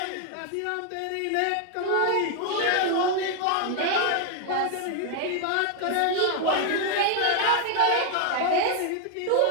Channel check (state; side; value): different; both; correlation 0.00